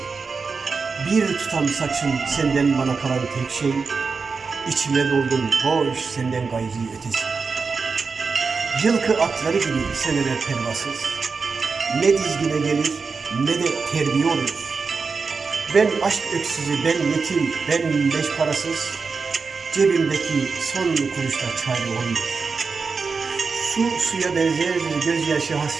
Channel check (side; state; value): left; quieter; 4.8 dB